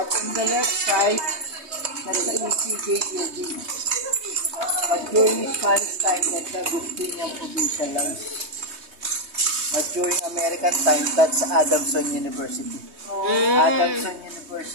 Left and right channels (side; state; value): left; late; 3.2 ms